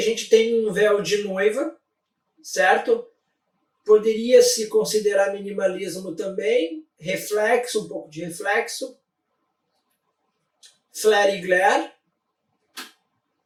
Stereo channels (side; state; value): both; identical; correlation 1.00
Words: gente tem um véu de noiva, certo? Poderia se considerar minimalismo também, reflexo, um pouco de reflexo, flare e glare,